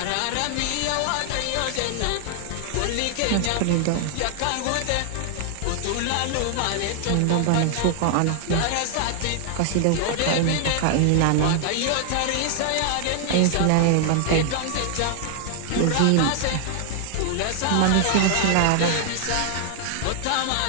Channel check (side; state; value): both; different; correlation 0.00